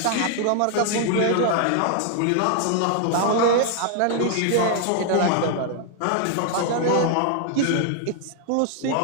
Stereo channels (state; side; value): different; both; correlation 0.00